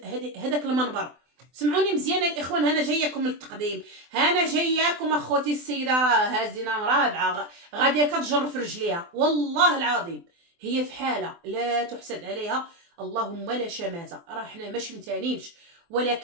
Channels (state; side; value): late; left; 24 ms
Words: هذاك المنبر. سمعوني مزيان الاخوان، انا جاياكم للتقديم، انا جاياكم اخوتي. السيده راه هازينه مرابعه غاديه كتجر في رجليها، والله العظيم هي في حاله لا تحسد عليها، اللهم لا شماته. راه حنا ما شمتانينش،